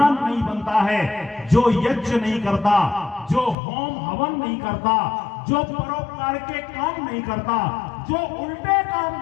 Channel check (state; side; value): drops out; right; at 3.6 s